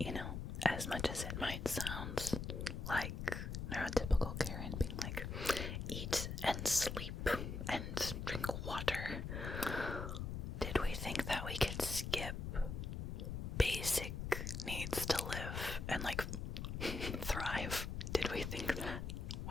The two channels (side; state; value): left; noise; rumble, 4 dB below the sound